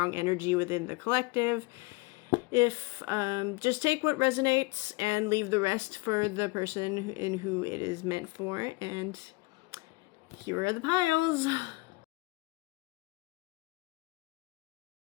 energy within the collective. If just take what resonates and leave the rest for the person in who it is meant for. And here are the piles.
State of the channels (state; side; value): quieter; right; 24.7 dB